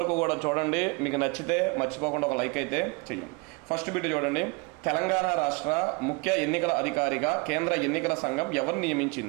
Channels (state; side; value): quieter; left; 29.3 dB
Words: కూడా చూడండి. మీకు నచ్చితే మర్చిపోకుండా ఒక లైక్ అయితే చెయ్యండి. ఫస్ట్ బిట్ చూడండి. తెలంగాణ రాష్ట్ర ముఖ్య ఎన్నికల అధికారిగా కేంద్ర ఎన్నికల సంఘం ఎవరు